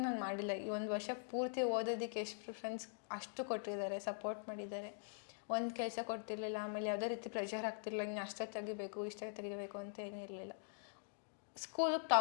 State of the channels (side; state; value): right; silent; digital silence